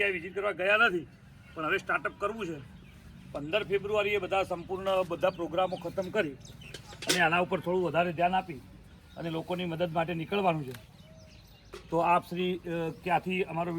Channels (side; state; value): both; identical; correlation 1.00